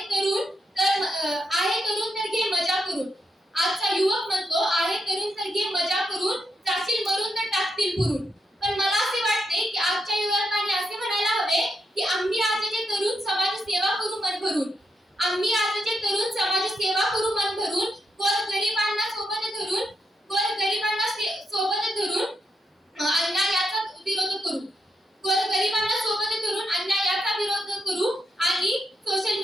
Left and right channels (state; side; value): normal; both; correlation 0.83